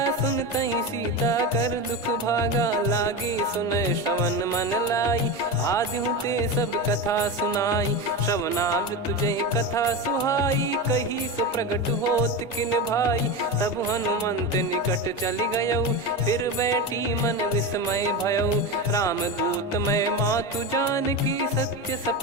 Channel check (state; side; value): normal; both; correlation 0.20